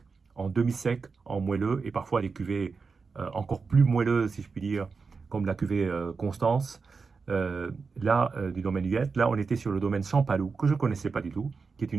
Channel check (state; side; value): quieter; left; 4.8 dB